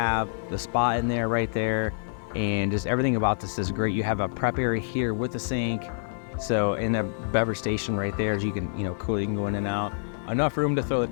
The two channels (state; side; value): silent; right; digital silence